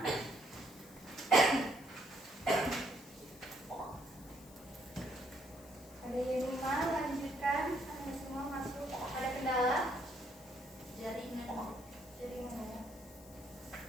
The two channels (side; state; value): left; noise; hiss, 21 dB below the sound